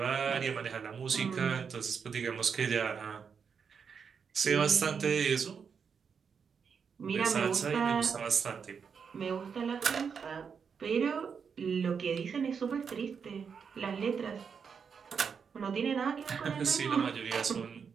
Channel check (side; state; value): left; quieter; 6.4 dB